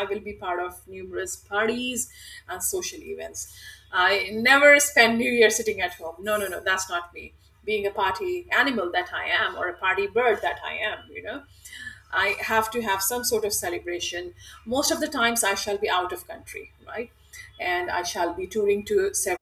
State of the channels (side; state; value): both; identical; correlation 1.00